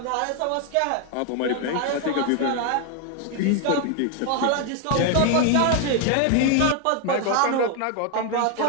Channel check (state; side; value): different; both; correlation 0.01